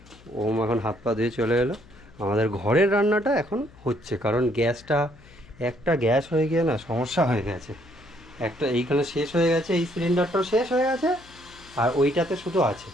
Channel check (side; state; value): left; noise; hum, 24 dB below the sound